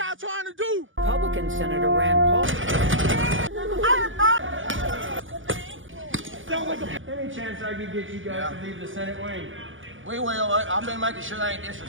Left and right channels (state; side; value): late; left; 0.57 ms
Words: y'all trying to do? Republican Senator Rand Paul. Any chance I could get you guys to leave the Senate wing? We will. I've been making sure they ain't